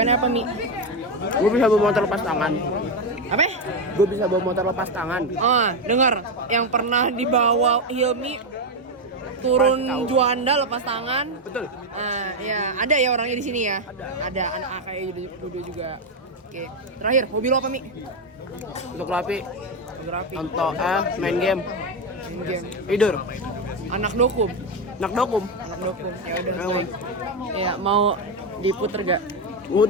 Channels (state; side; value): normal; both; correlation 0.09